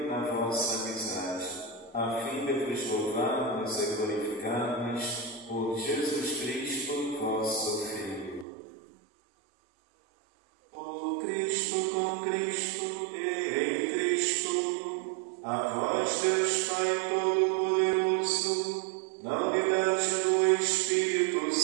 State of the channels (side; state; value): left; drops out; at 8.5 s